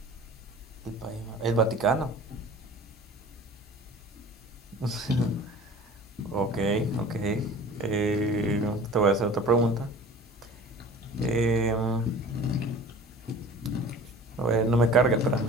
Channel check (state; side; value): normal; both; correlation 0.43